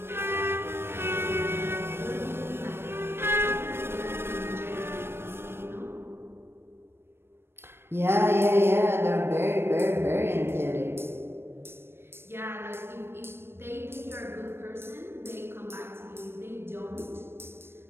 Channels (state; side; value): late; left; 0.12 ms